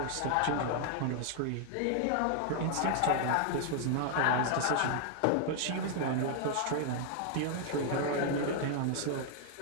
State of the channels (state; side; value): different; both; correlation 0.00